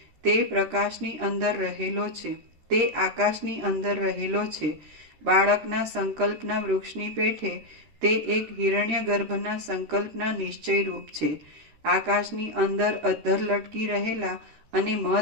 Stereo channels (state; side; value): late; left; 13 ms